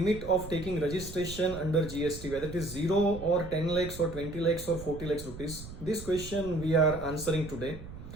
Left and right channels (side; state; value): right; noise; rumble, 13 dB below the sound